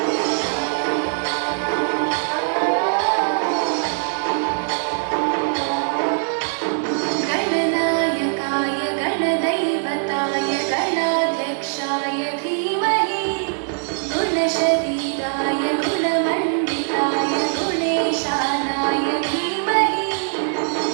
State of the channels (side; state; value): left; silent; digital silence